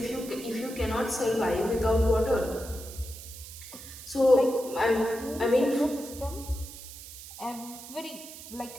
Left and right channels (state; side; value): noise; right; hiss, 14 dB below the sound